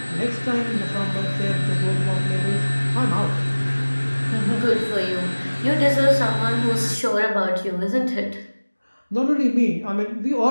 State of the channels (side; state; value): both; inverted; correlation -1.00